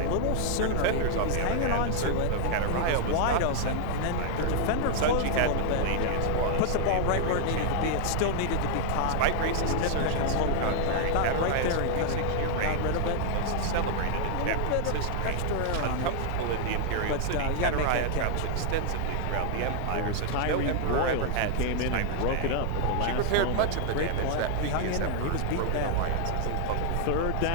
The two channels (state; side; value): different; both; correlation 0.00